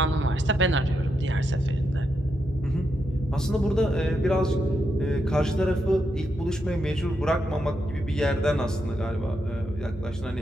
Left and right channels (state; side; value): normal; both; correlation 0.83